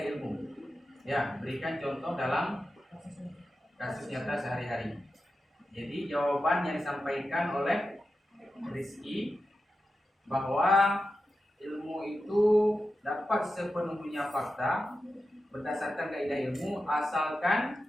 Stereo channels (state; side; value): normal; both; correlation 0.91